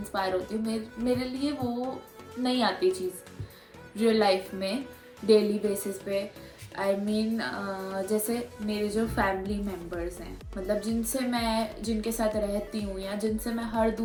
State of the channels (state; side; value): identical; both; correlation 1.00